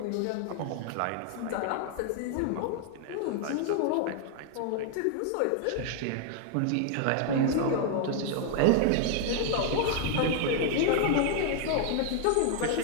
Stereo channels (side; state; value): both; different; correlation 0.00